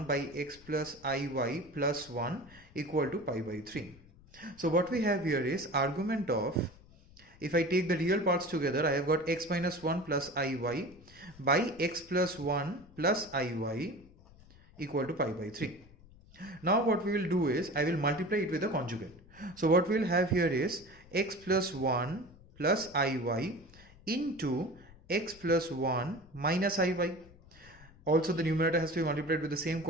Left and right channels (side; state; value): left; noise; rumble, 24 dB below the sound